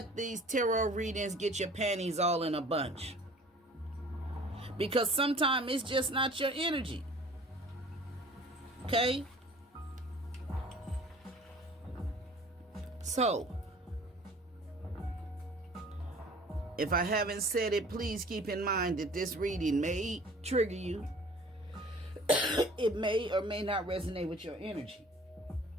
these tarot readings get your panties all in a bunch. Because sometimes it's just not your energy. Okay? So, if I haven't said it, please keep in mind that this reading may trigger you. It may or may not resonate with your energy.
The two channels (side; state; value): both; normal; correlation 0.48